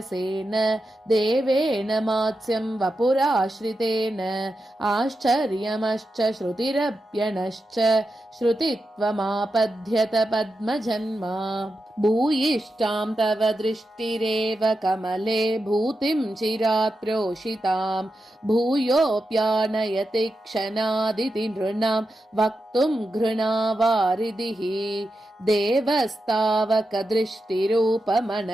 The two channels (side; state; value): both; normal; correlation 0.89